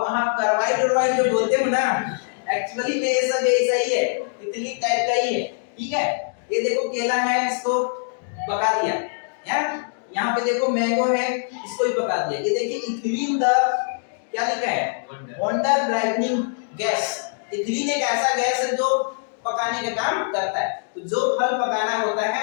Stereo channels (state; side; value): silent; right; digital silence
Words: कार्बाइड जो बोलते हो ना, एक्चुअली में ये सब ऐसा ही है, इथिलीन टाइप का ही है, ठीक है। ये देखो केला है, इसको पका दिया, यहाँ पे देखो मैंगो है, इसको भी पका दिया, ये देखिए इथिलीन द क्या लिखा है, वंडर ब्राइटनिंग गैस। इथिलीन एक ऐसा गैस है जो पकाने का काम करता है, तो जो फल पकाना होता